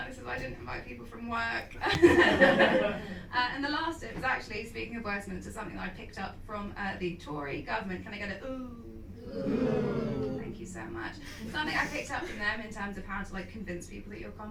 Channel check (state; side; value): identical; both; correlation 1.00